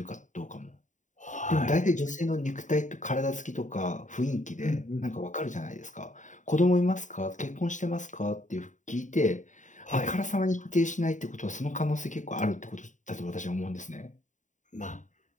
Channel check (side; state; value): right; late; 0.36 ms